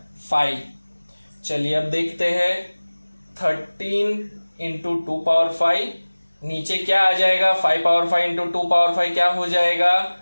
5। चलिए अब देखते हैं, 13 इंटू 2 पावर 5, नीचे क्या आ जाएगा, 5 पावर 5 इंटू 2 पावर 5 क्या हो जाएगा,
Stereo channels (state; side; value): inverted; both; correlation -1.00